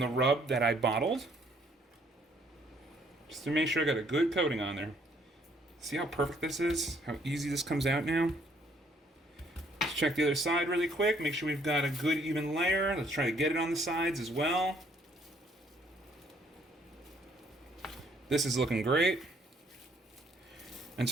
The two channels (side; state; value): both; normal; correlation 0.65